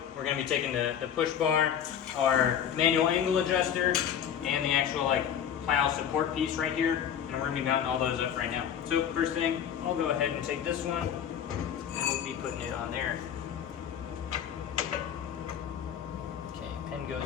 we're going to be taking the push bar, our manual angle adjuster, and the actual like plow support piece right here, and we're going to be mounting all those up right now. So first thing, I'll go ahead and take this one, and we'll be putting it on there. Okay, pin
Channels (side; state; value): right; quieter; 9.0 dB